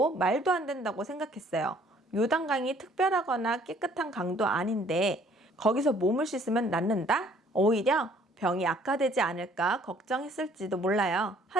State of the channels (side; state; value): both; normal; correlation 0.59